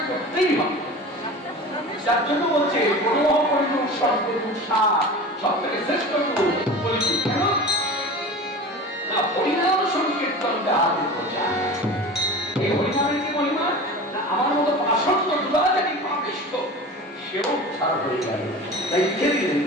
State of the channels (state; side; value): normal; both; correlation 0.35